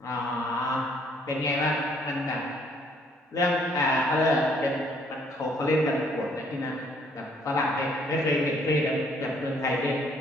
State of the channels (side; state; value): both; normal; correlation 0.64